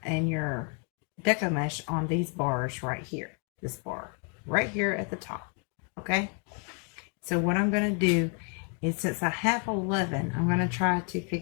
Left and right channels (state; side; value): quieter; right; 37.9 dB